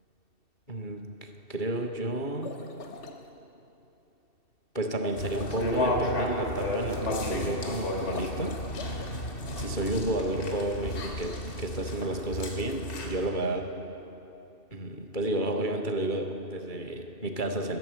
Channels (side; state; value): right; late; 2.7 ms